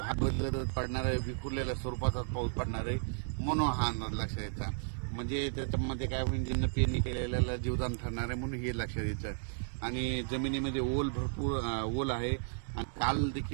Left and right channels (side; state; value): left; silent; digital silence